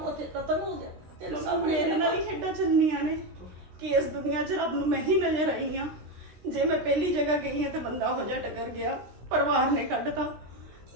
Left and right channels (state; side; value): late; left; 16 ms